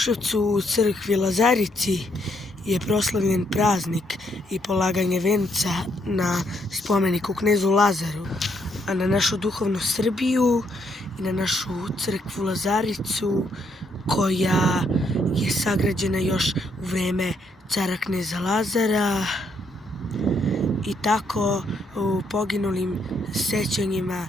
u crkvi Lazarici je proslavljen praznik i polaganje venca na spomeniku knezu Lazaru, a na našu duhovnu Srbiju i na našu crkvu Lazaricu koja je sagrađena još u vreme cara kneza Lazara, i tako u poginulim sećanjima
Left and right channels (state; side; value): normal; both; correlation 0.74